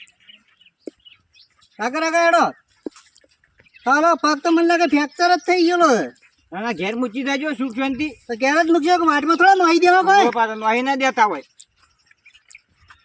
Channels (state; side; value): identical; both; correlation 1.00